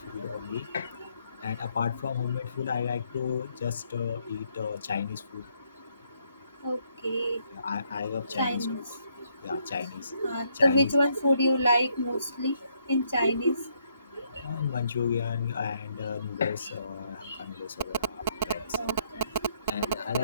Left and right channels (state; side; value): inverted; both; correlation -0.73